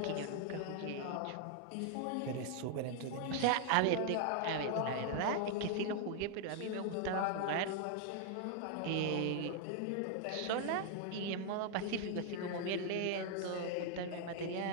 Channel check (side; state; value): both; different; correlation 0.00